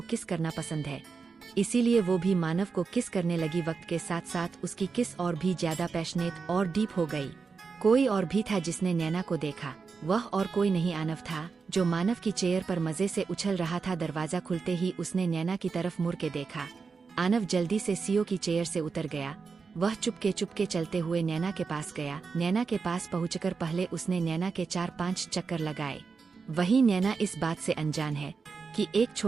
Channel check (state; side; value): quieter; left; 5.0 dB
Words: किस करना पसंद है, इसीलिए वो भी मानव को किस करने लगी। वक्त के साथ साथ उसकी किस और भी ज्यादा पैशनेट और डीप हो गई। कोई और भी था जिसने नैना को देखा। वह और कोई नहीं आनव था, जो मानव की चेयर पर मजे से उछल रहा था। दरवाजा खुलते ही उसने नैना की तरफ मुड़ के देखा। आनव जल्दी से सीओ की चेयर से उतर गया। वह चुपके चलते हुए नैना के पास गया। नैना के पास पहुंचकर पहले उसने नैना के 4-5 चक्कर लगाए। वही नैना इस बात से अनजान है कि एक